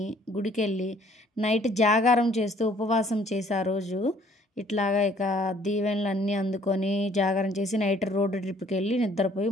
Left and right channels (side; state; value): both; normal; correlation 0.60